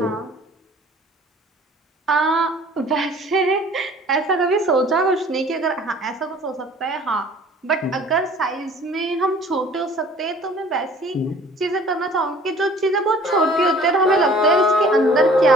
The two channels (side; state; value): both; normal; correlation 0.50